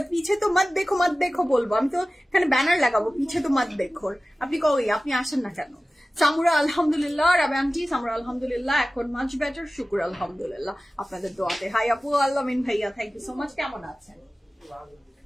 পিছে তো মত দেখো বলবো, আমি তো এখানে ব্যানার লাগাবো পিছে তো মত দেখো। আপনি কই, আপনি আসেন না কেন? সামুরা আলহামদুলিল্লাহ, রাবে আন্টি সামুরা আলহামদুলিল্লাহ, এখন মাচ বেটার, শুকুর আলহামদুলিল্লাহ আপনাদের দোয়াতে। হাই আপু, আল্লামিন ভাইয়া, থ্যাংক ইউ সো মাচ। কেমন আছেন?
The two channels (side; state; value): both; normal; correlation 0.96